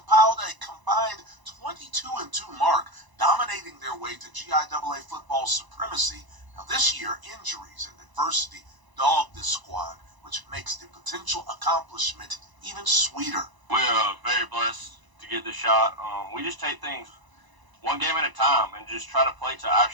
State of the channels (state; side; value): late; left; 1.0 ms